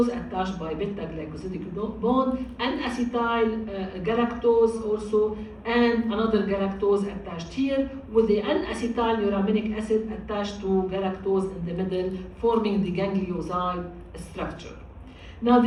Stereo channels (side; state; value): both; identical; correlation 1.00